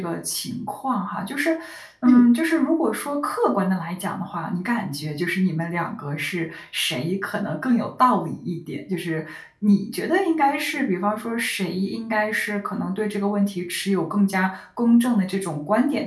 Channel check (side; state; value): both; identical; correlation 1.00